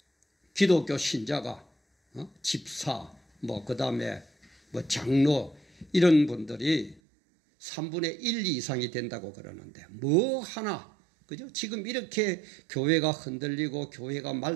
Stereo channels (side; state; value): left; drops out; at 7.0 s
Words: 기독교 신자가 집사, 뭐 그다음에 뭐 장로 이런 분들이 3분의 1 이상이 된다고 그러는데 뭐 하나 그죠? 지금 이렇게 교회가 흔들리고 교회가